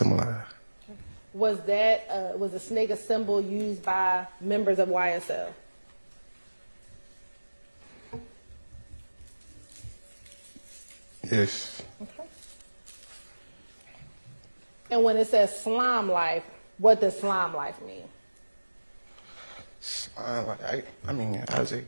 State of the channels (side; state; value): both; inverted; correlation -1.00